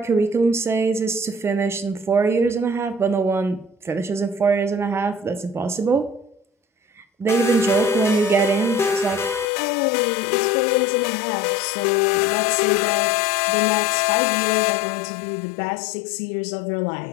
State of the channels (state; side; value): drops out; right; at 9.5 s